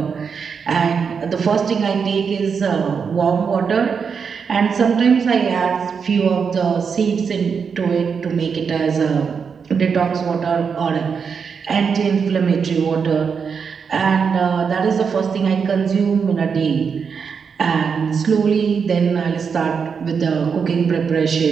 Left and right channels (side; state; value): left; quieter; 6.1 dB